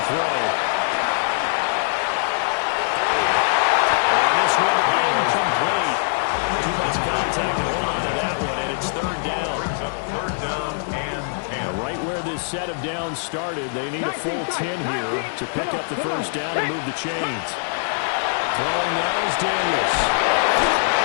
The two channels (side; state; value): right; silent; digital silence